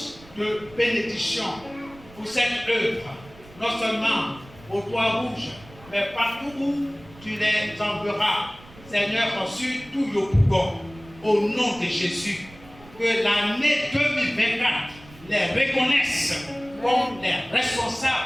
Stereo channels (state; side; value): noise; right; rumble, 22 dB below the sound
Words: de bénédiction pour cette œuvre, non seulement au Toit Rouge, mais partout où tu les enverras, Seigneur, sur tout le Yopougon, au nom de Jésus, que l'année 2024 les reconnaisse comme les